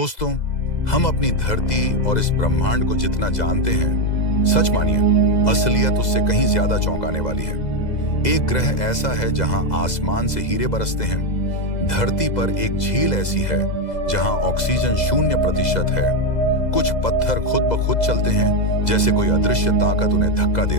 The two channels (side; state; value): right; late; 2.0 ms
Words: हम अपनी धरती और इस ब्रह्मांड को जितना जानते हैं, सच मानिए असलियत उससे कहीं ज्यादा चौंकाने वाली है। एक ग्रह ऐसा है जहां आसमान से हीरे बरसते हैं। धरती पर एक झील ऐसी है जहां ऑक्सीजन 0% है। कुछ पत्थर खुद ब खुद चलते हैं, जैसे कोई अदृश्य ताकत उन्हें धक्का दे